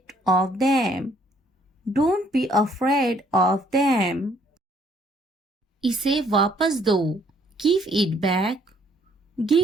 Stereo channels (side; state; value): both; normal; correlation 0.64